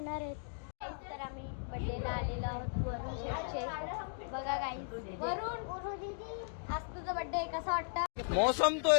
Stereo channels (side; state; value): right; silent; digital silence